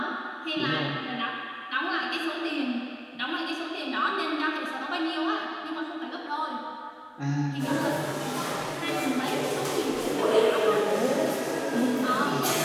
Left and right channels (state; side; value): identical; both; correlation 1.00